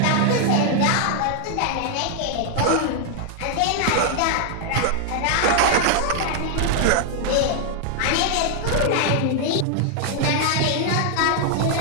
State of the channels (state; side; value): different; both; correlation 0.00